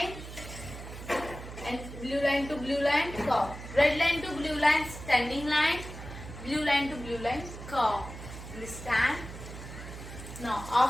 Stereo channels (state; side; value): noise; right; hum, 12 dB below the sound